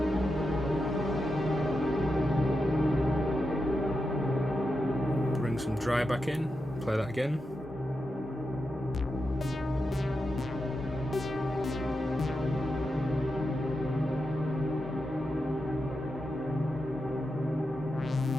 Bring some dry back in, play that again.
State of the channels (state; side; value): normal; both; correlation 0.88